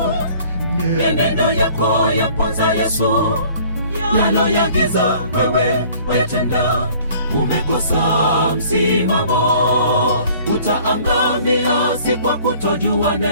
mienendo yako yaponza Yesu. Yaloyagiza wewe wetenda, umekosa msimamo. Utaangamia si kwa kutojua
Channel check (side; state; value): both; inverted; correlation -0.53